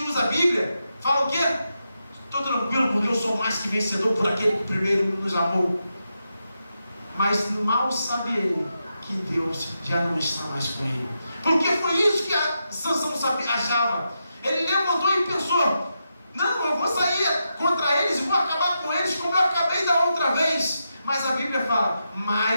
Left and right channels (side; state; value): both; inverted; correlation -0.86